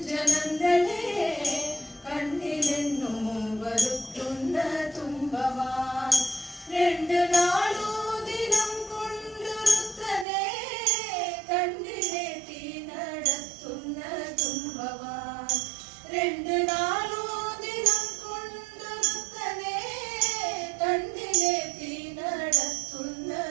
നന്ദനേ കണ്ണിലെന്നും വരുത്തുന്ന തുമ്പവാൻ രണ്ടു നാളു ദിനം കൊണ്ടുരുത്തനേ കണ്ണിലേറ്റി നടത്തുന്ന തുമ്പവാൻ രണ്ടു നാളു ദിനം കൊണ്ടുരുത്തനേ കണ്ണിലേറ്റി നടത്തുന്ന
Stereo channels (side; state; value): left; drops out; at 10.2 s